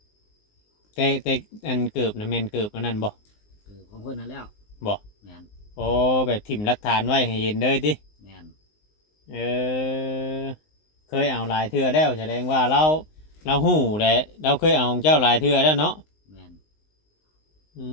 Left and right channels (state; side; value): late; right; 19 ms